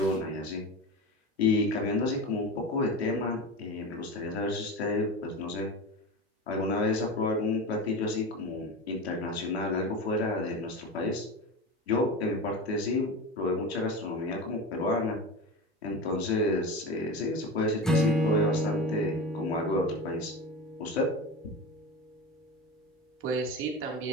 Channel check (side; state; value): both; normal; correlation 0.26